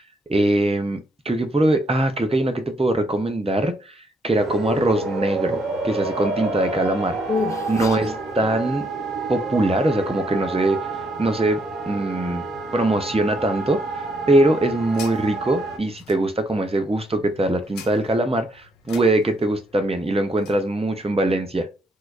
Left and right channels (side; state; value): both; normal; correlation 0.73